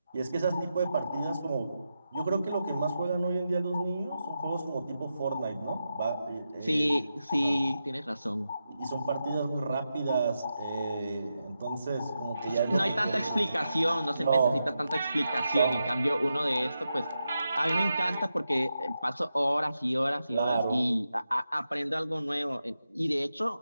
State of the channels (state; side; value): inverted; both; correlation -0.88